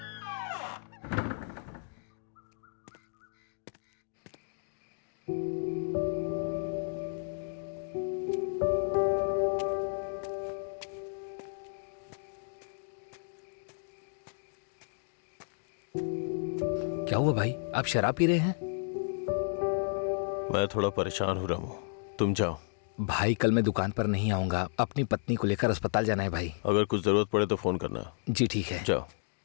क्या हुआ भाई, आप शराब पी रहे हैं? मैं थोड़ा परेशान हो रहा हूँ, तुम जाओ। भाई कल मैं दुकान पर नहीं आऊंगा, अपनी पत्नी को लेकर अस्पताल जाना है भाई। अगर कुछ जरूरत पड़े तो फोन करना। जी ठीक है। जाओ।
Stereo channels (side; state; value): right; silent; digital silence